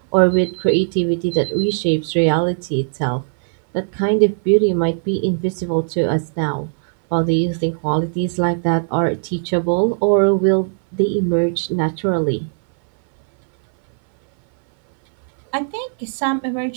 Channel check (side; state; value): left; silent; 61 dB below the other